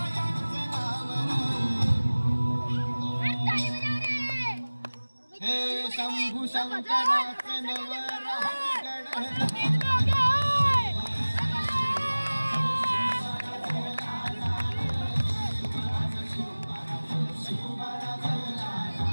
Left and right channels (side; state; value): both; inverted; correlation -1.00